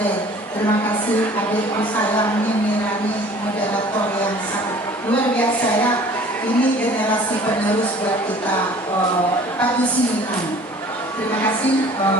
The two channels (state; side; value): normal; both; correlation 0.49